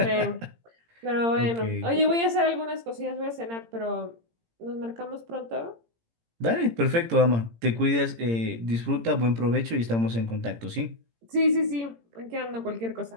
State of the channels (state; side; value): late; left; 17 ms